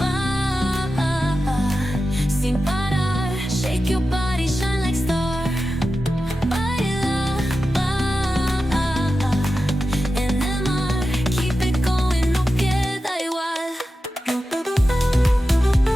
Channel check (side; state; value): both; normal; correlation 0.92